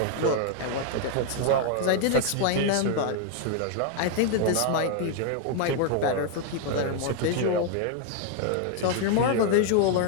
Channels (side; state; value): both; different; correlation 0.00